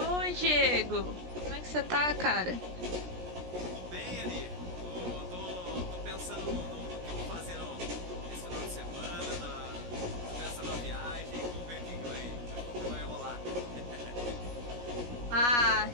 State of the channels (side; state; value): left; late; 17 ms